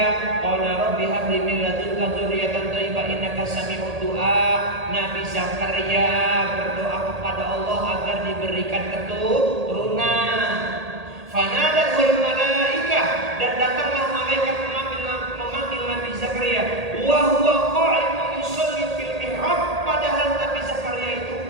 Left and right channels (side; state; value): left; late; 1.8 ms